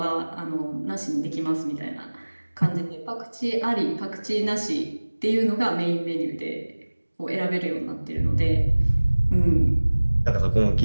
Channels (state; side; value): inverted; both; correlation -1.00